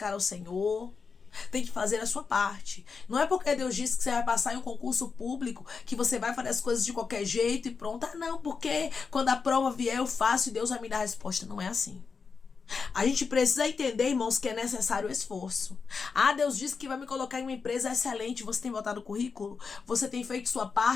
o Senhor. Tem que fazer a sua parte. Não é porque Deus disse que você vai passar em um concurso público que você vai fazer as coisas de qualquer jeito e pronto. Ah, não, porque quando a prova vier eu faço e Deus vai me dar a resposta. Não é assim. A gente precisa entender, irmãos, que é necessário esforço. Ah, Deus disse que vai me colocar em uma empresa excelente. Você tem botado o currículo? Você tem feito sua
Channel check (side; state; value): right; quieter; 5.2 dB